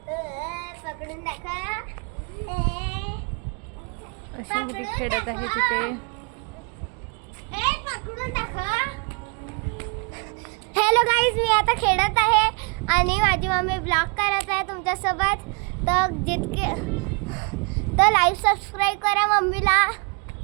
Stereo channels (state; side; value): quieter; left; 34.8 dB